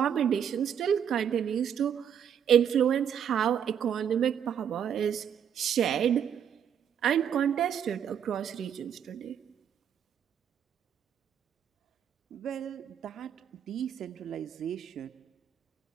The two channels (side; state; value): left; quieter; 8.5 dB